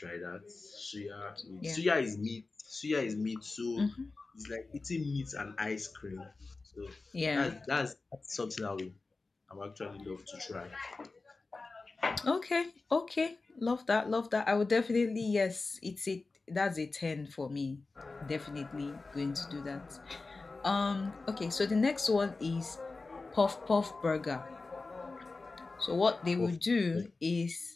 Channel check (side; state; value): right; quieter; 3.7 dB